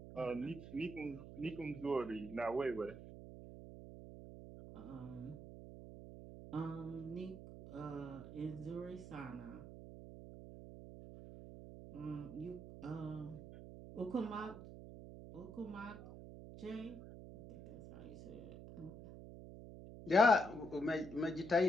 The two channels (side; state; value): right; noise; hum, 12 dB below the sound